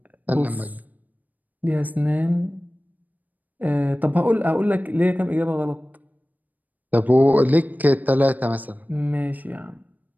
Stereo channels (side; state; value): left; late; 0.082 ms